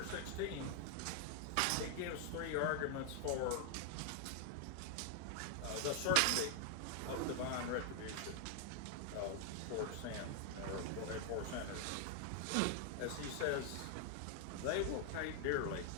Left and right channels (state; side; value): different; both; correlation 0.00